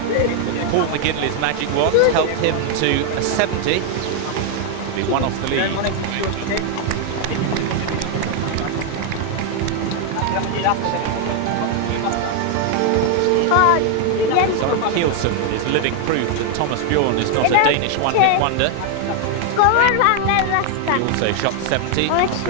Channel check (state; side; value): different; both; correlation 0.00